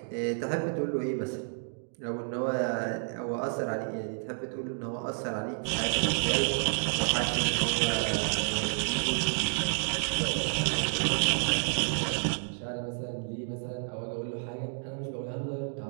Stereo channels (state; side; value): silent; left; digital silence